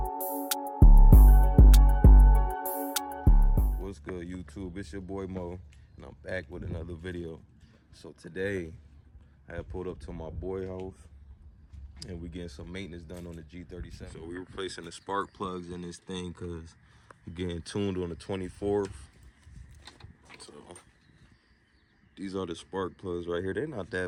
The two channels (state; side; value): identical; both; correlation 1.00